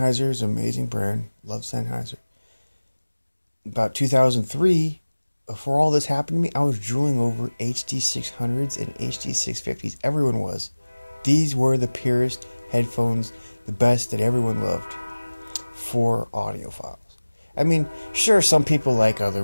is an amazing brand. Love Sennheiser. About 2003, before all this happened to me, I was drooling over HD600s and HD650s. Everyone was. These were the purest headphones, the best that everyone loved for audiophiles. I mean, sure, some people like other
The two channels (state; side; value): inverted; both; correlation -1.00